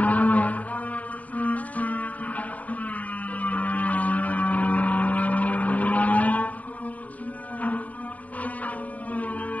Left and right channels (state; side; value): late; right; 0.071 ms